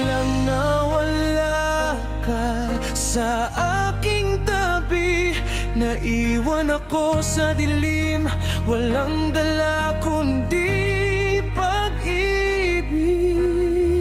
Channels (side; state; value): both; identical; correlation 1.00